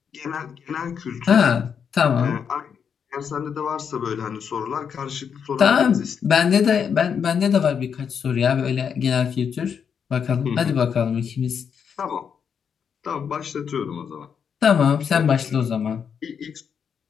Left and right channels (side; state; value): right; quieter; 7.1 dB